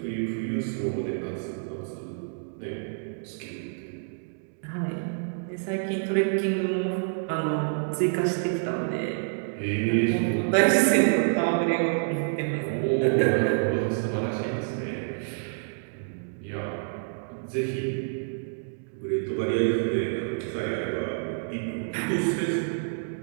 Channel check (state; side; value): silent; left; digital silence